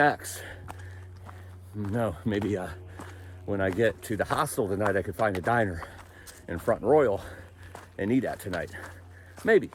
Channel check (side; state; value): both; identical; correlation 1.00